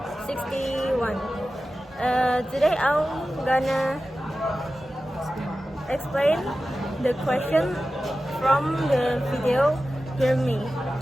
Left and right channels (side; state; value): both; normal; correlation 0.94